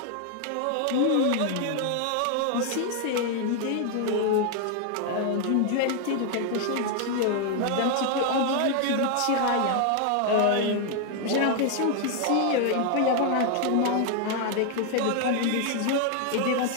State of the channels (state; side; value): different; both; correlation 0.00